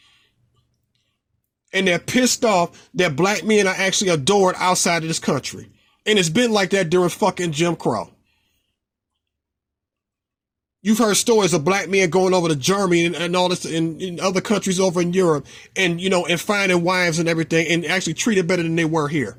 And they're pissed off that black men are actually adored outside of this country. And it's been like that during fucking Jim Crow. You've heard stories of black men going over to Germany and all this in other countries over in Europe and, and finding wives and everything and actually treated better than they were here.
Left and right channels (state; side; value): identical; both; correlation 1.00